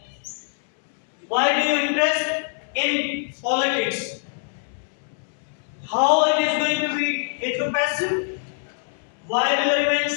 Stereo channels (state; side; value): silent; right; 63 dB below the other